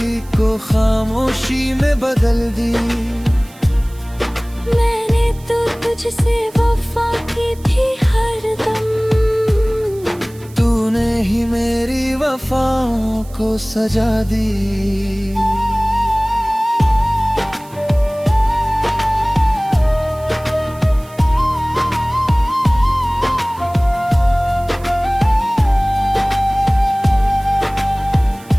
को खामोशी में बदल दी। मैंने तो तुझसे वफा की थी हरदम, तूने ही मेरी वफाओं को सजा दी।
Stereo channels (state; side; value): noise; right; hiss, 24 dB below the sound